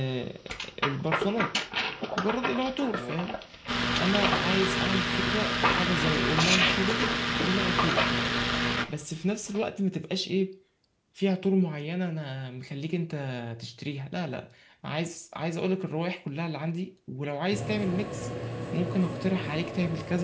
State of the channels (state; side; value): identical; both; correlation 1.00